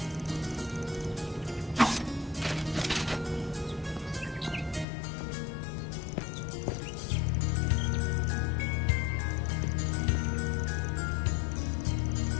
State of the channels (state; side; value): drops out; right; at 4.9 s